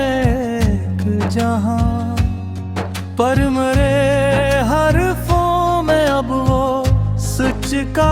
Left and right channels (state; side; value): identical; both; correlation 1.00